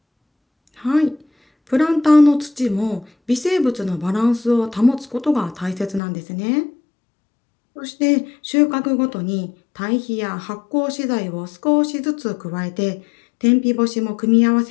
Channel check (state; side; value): drops out; right; at 6.0 s